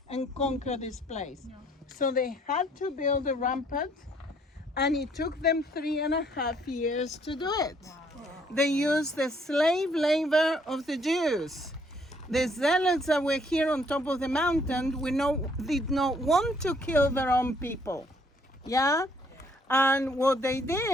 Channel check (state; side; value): normal; both; correlation 0.65